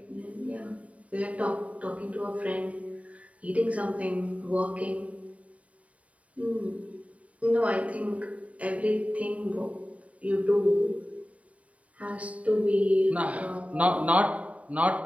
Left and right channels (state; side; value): late; left; 0.067 ms